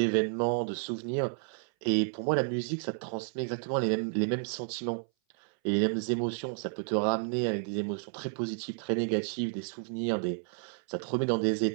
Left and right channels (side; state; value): left; silent; 57 dB below the other